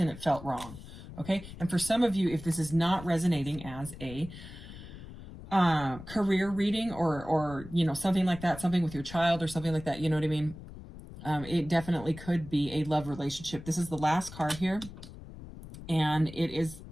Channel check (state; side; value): noise; left; rumble, 14 dB below the sound